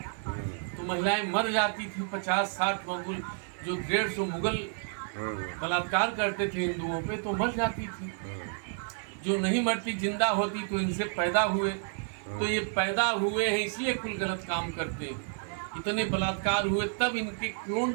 तो महिलाएं मर जाती थी। 50-60 मुगल, जो 150 मुगल बलात्कार करते थे हिंदुओं पे, तो मर जाती थी। जो नहीं मरती, जिंदा होती, तो इनसे पैदा हुए। तो ये पैदा हुए हैं इसलिए कुल गलत काम करते हैं। इतने बलात्कार हुए, तब इनके क्लोन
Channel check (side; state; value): left; silent; 57 dB below the other